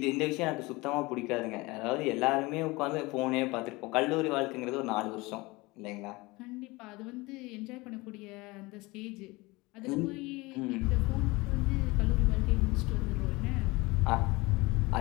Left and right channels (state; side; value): quieter; right; 22.9 dB